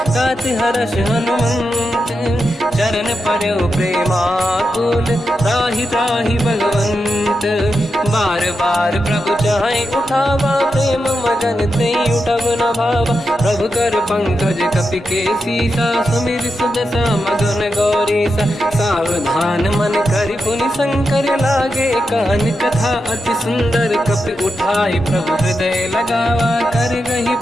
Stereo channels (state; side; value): normal; both; correlation 0.87